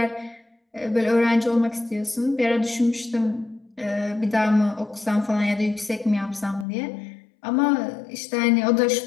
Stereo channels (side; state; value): right; drops out; at 6.7 s